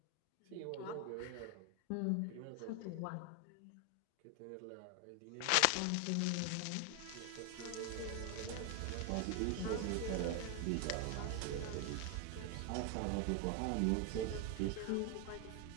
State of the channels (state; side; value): different; both; correlation 0.01